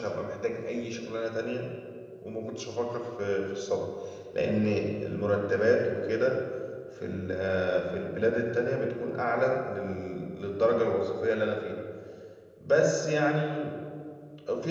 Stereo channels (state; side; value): identical; both; correlation 1.00